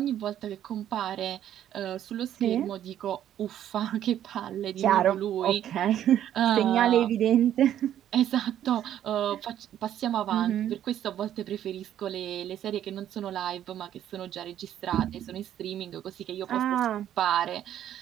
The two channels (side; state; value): left; quieter; 11.0 dB